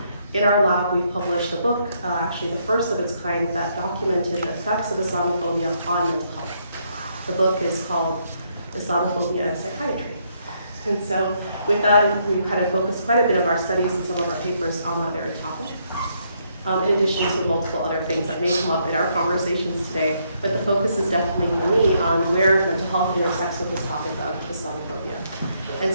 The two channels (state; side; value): inverted; both; correlation -0.73